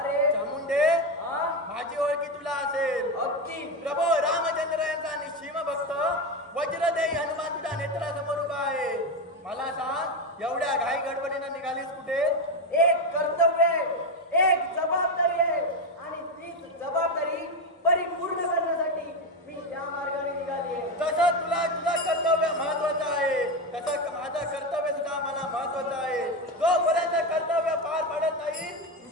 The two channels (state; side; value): normal; both; correlation 0.13